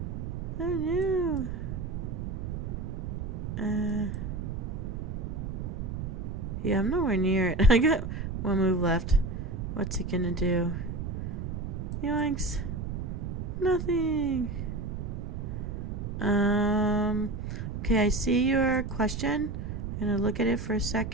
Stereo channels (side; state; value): right; noise; rumble, 4 dB below the sound